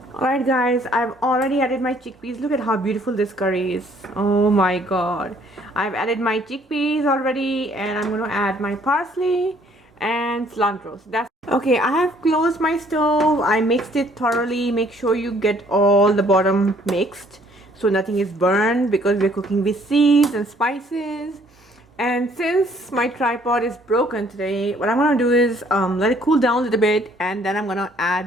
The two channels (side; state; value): both; normal; correlation 0.61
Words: Alright guys, I've already added my chickpeas. Look at how beautiful this curry is. Oh my god. I've added my chickpeas already, and I'm going to add my parsley and cilantro. So that's okay. I have closed my stove. I mixed it thoroughly. Make sure you get all the bottom mixed so nothing is burned, because we're cooking with seeds and spices. And since my tripod is broken today, what I'm going to do is let it cool down a little bit, and then I'm going to